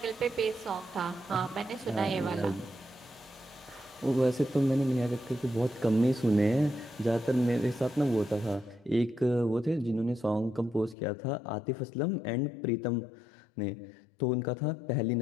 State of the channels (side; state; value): right; drops out; at 11.0 s